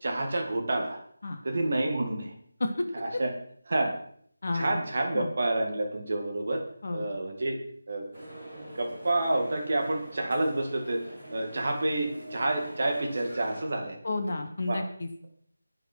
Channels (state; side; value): inverted; both; correlation -0.93